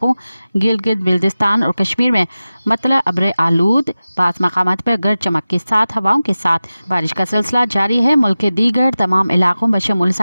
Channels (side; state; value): both; inverted; correlation -0.96